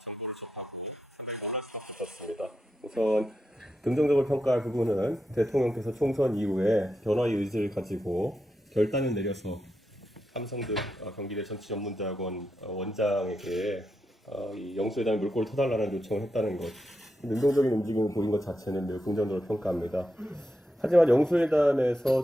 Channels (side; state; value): both; normal; correlation 0.85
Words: 정보를 접하고 상당히 놀랄 수가 없었습니다. 우선 긍정적으로 평가할 부분은 대통령께서 총선 이후에 변화의 의지를 가지고 결단을 내려서 삼성등 경기대 정치전문대학원 원장에게 이 영수회담의 물꼬를 터달라는 요청을 했다는 것, 능동적인 움직임을 보인 것 자체는 매우 긍정적으로 평가합니다. 하지만